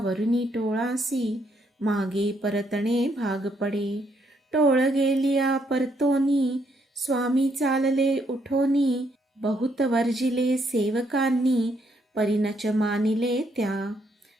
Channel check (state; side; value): normal; both; correlation 0.73